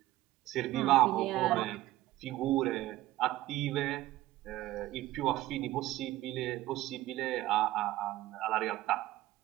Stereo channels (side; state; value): left; quieter; 16.1 dB